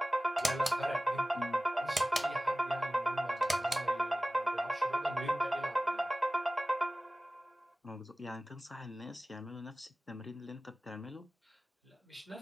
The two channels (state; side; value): normal; both; correlation 0.97